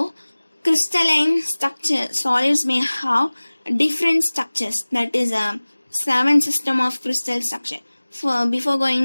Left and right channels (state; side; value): inverted; both; correlation -1.00